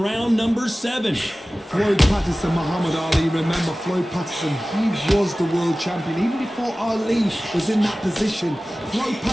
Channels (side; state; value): both; normal; correlation 0.97